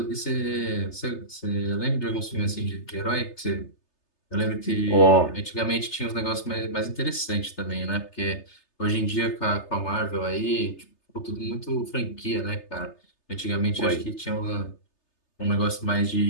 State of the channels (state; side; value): late; right; 3.3 ms